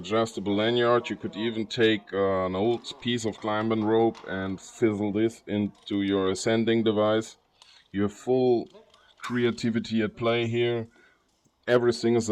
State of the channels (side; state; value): both; identical; correlation 1.00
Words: lanyard. You could even take an old piece of climbing rope and fizzle this into your ascending device. You have full creativity at play here. Everything is